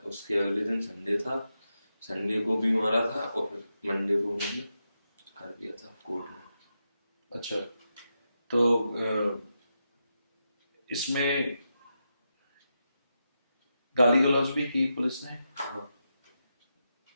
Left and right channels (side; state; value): both; inverted; correlation -0.87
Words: अगले दिन संडे था, संडे को भी मारा था, और फिर मंडे को मैंने कर दिया था कोर्ट में। अच्छा, तो इसमें गाली गलौज भी की पुलिस ने? हाँ,